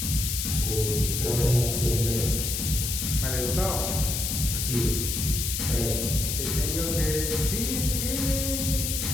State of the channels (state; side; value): noise; left; hiss, 1 dB below the sound